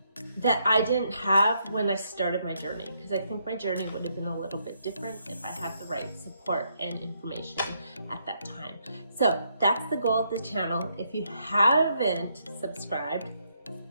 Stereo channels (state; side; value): inverted; both; correlation -0.75